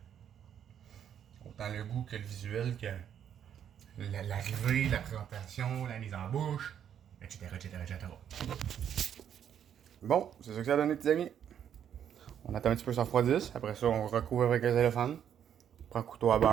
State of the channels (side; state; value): left; quieter; 9.2 dB